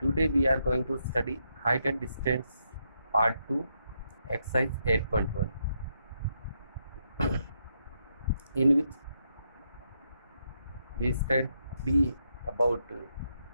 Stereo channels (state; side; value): inverted; both; correlation -0.80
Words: we are going to study height and distance part 2, exercise 8.1, in which we study about